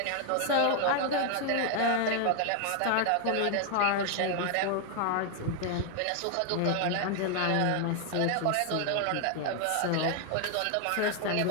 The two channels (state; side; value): different; both; correlation 0.00